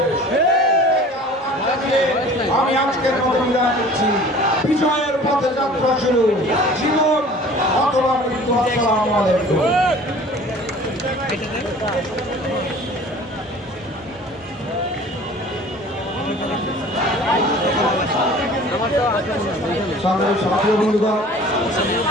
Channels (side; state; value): both; normal; correlation 0.46